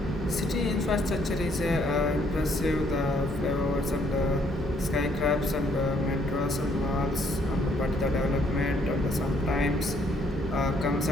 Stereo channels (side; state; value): both; normal; correlation 0.67